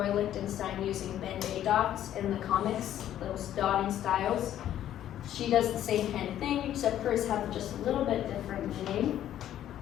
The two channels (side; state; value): right; quieter; 11.6 dB